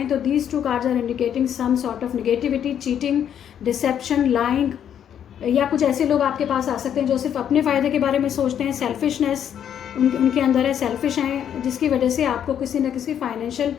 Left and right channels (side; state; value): right; quieter; 9.3 dB